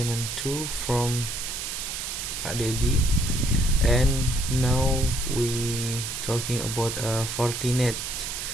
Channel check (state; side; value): noise; right; hiss, 5 dB below the sound